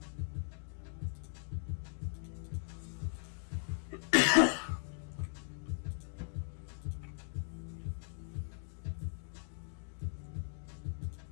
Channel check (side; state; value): right; silent; 52 dB below the other